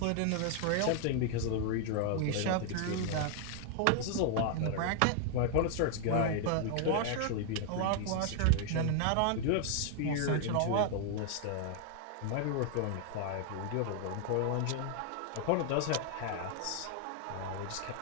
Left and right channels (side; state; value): both; different; correlation 0.00